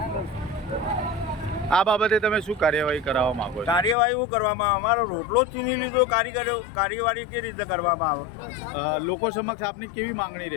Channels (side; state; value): right; drops out; at 4.0 s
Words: આ બાબતે તમે શું કાર્યવાહી કરાવવા માંગો છો? કાર્યવાહી શું કરવામાં આવે? અમારો રોટલો જ છીની લીધો, કાર્યવાહી કેવી રીતે કરવામાં આવે? લોકો સમક્ષ આપની કેવી માંગણી